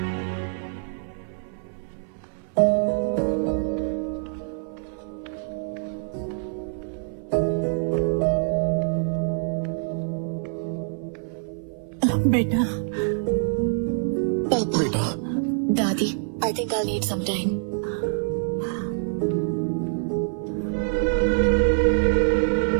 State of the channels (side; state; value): left; silent; 58 dB below the other